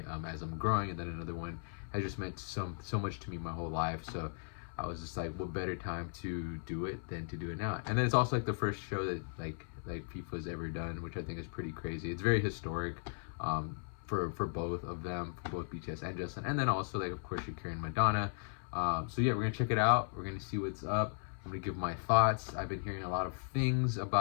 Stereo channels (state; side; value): silent; right; 53 dB below the other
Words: as I'm growing, and then another one has just meant so much to me my whole life. So I was just like, what better time to do it than to do it now? And then it's also like the first show that like FIFA's ever done, which I think is pretty crazy. It's very historic for both of them, for both BTS and Justin, and then also like of course Shakira and Madonna. So yeah, we're gonna check it out. We're gonna see what's up. I'm gonna give my thoughts. I've been hearing a lot of things